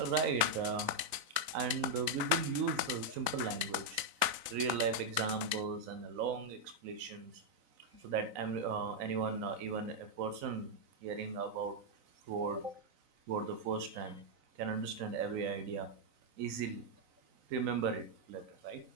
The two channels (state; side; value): late; left; 4.0 ms